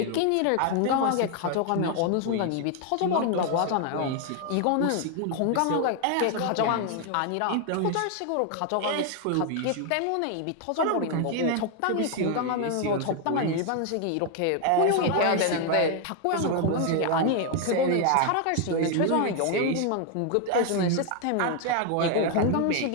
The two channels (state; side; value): different; both; correlation 0.00